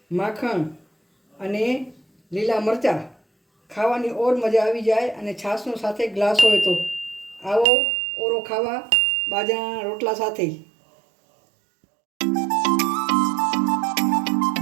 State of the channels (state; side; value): drops out; left; at 7.7 s